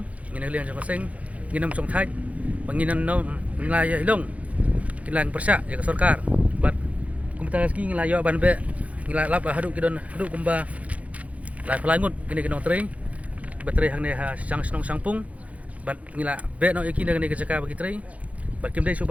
ngina liang jong seng nginam song thai banginan no ngila ya hilong kilang persya ya sarkar bat kumta ski ngila yo ban be ngila lap hadu kidon hadu kumba lai pelangut gini kinong tre baterai hang ne ha sang snong sangpung bat ngila be no iki ne kejaka bagi tre bat kim dei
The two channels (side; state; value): left; late; 0.067 ms